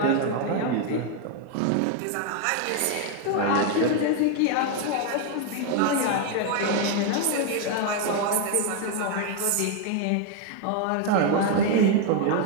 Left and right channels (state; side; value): different; both; correlation 0.01